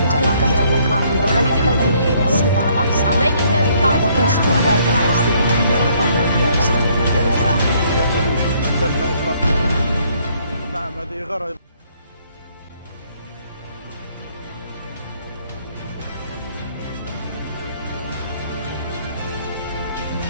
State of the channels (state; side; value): inverted; both; correlation -0.65